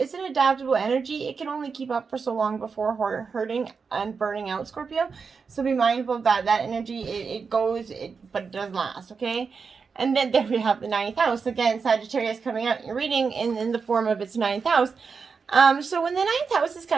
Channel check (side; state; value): left; quieter; 5.3 dB